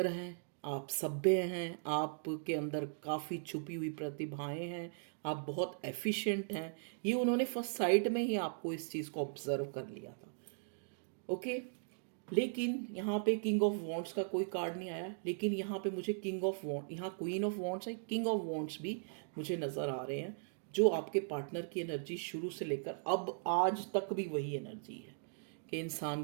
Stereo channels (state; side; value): silent; left; digital silence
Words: हैं, आप सभ्य हैं, आपके अंदर काफ़ी छुपी हुई प्रतिभाएं हैं, आप बहुत एफिशिएंट हैं। ये उन्होंने फर्स्ट साइट में ही आपको इस चीज़ को ऑब्जर्व कर लिया था। ओके, लेकिन यहाँ पे किंग ऑफ वॉन्ड्स का कोई कार्ड नहीं आया, लेकिन यहाँ पे मुझे किंग ऑफ वॉन्ड, यहाँ क्वीन ऑफ वॉन्ड्स है, किंग ऑफ वॉन्ड्स भी मुझे नज़र आ रहे हैं, जो आपके पार्टनर की एनर्जी शुरू से लेकर अब आज तक भी वही एनर्जी है कि